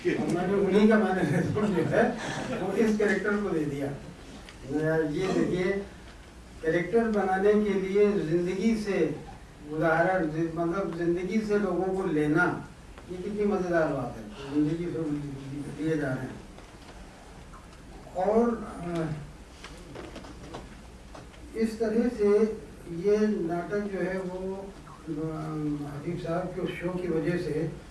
और मैंने उन्हीं का मैनरिज्म जो है वो इस कैरेक्टर को दे दिया। ये देखिए, कैरेक्टर बनाने के लिए जिंदगी से उदाहरण, मतलब जिंदगी से लोगों को लेना, ये कितनी मजेदार बात है। जिंदगी से लिए जा रहे हैं। और इस तरह से ये नाटक जो है वो हबीब साहब के शो की वजह से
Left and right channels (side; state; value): both; identical; correlation 1.00